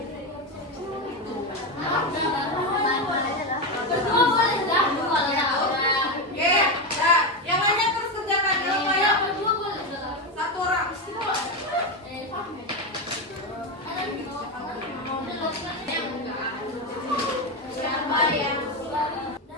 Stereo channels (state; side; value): normal; both; correlation 0.13